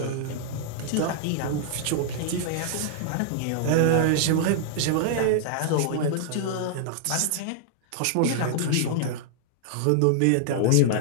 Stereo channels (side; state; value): both; different; correlation -0.01